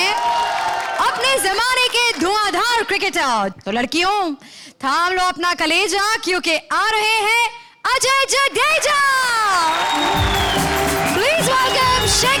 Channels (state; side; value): identical; both; correlation 1.00